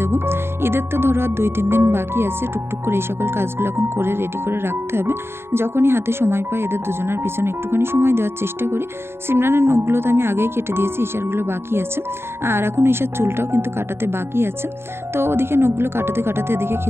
দেবো। ঈদের তো ধরো আর 2-3 দিন বাকি আছে। টুকটুক করে এই সকল কাজগুলো এখন করে রেডি করে রাখতে হবে। যখনই হাতে সময় পাই এদের দুজনের পিছনে একটুখানি সময় দেওয়ার চেষ্টা করি। সিমরানের নখগুলো তো আমি আগেই কেটে দিয়েছি, ঈশারগুলো বাকি আছে। আর এখন ঈশার চুলটাও কিন্তু কাটাতে বাকি আছে। তো ওদিকে নখগুলো কাটাতে কাটাতে এদিকে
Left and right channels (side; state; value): left; late; 0.12 ms